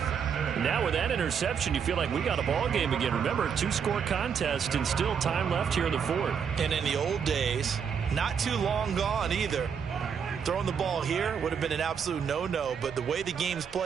Now with that interception, you feel like we got a ball game again. Remember, 2-score contest and still time left here in the 4th. And in the old days, not too long gone either. Throwing the ball here would have been an absolute no-no, but the way the game's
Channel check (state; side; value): quieter; left; 7.0 dB